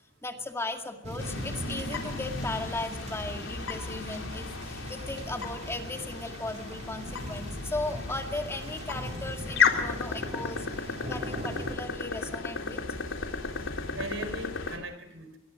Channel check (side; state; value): right; quieter; 3.3 dB